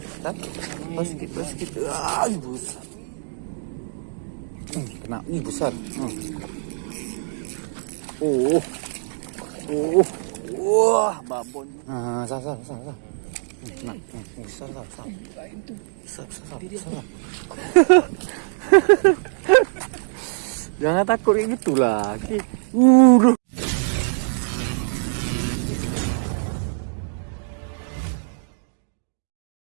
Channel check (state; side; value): silent; left; digital silence